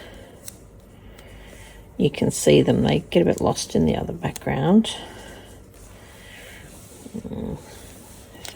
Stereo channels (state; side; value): identical; both; correlation 1.00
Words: You can see them, they get a bit lost in the other background.